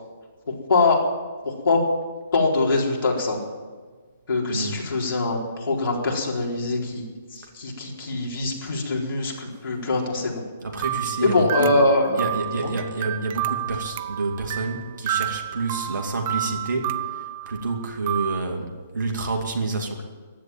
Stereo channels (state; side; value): inverted; both; correlation -0.59